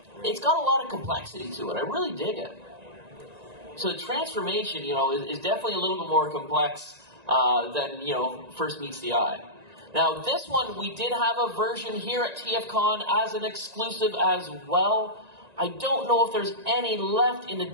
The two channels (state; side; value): late; left; 1.9 ms